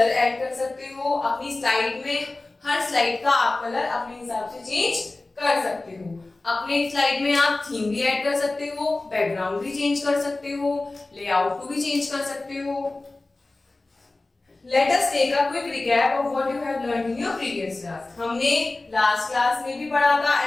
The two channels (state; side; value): quieter; right; 3.1 dB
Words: ऐड कर सकते हो, अपनी स्लाइड में हर स्लाइड का आप कलर अपने हिसाब से चेंज कर सकते हो। अपने स्लाइड में आप थीम भी ऐड कर सकते हो, बैकग्राउंड भी चेंज कर सकते हो, लेआउट को भी चेंज कर सकते हो। Let us take a quick recap of what you have learned in your previous class. हमने लास्ट क्लास में भी पढ़ा था